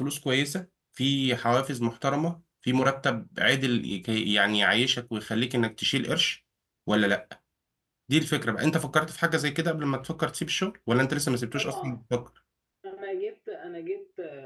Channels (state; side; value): identical; both; correlation 1.00